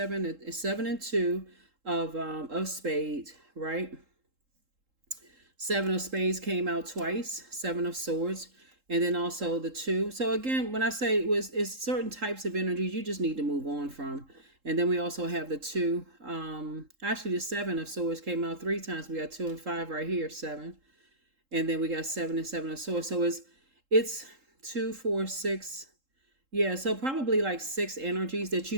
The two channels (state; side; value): late; left; 3.7 ms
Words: and 2 of spades, right? 7 of spades came out twice, 7 of swords, and then also the 2. So again, when I say it's certain types of energies you just need to move on from. And then we also have the 2. Actually, the 7 of swords came out 3 times. We got 2 and 5 right here, 7. And then we got 7 and 7 of swords. So it's 2, 4, 6. Yeah, so probably like 6 energies that